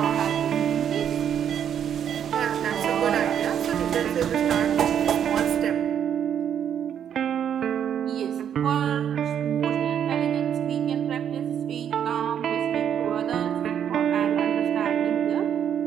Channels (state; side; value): quieter; left; 9.0 dB